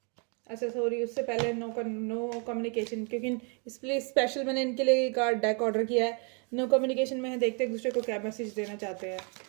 अच्छा सॉरी, उससे पहले नो कम्युनिकेशन, क्योंकि इसलिए स्पेशल मैंने इनके लिए कार्ड डेक ऑर्डर किया है। नो कम्युनिकेशन में है, देखते हैं एक दूसरे को क्या मैसेज देना चाहते हैं।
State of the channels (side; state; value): left; quieter; 35.8 dB